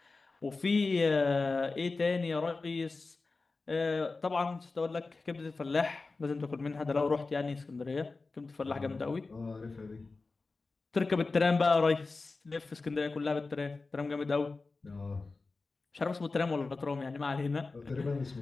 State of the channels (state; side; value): quieter; right; 3.8 dB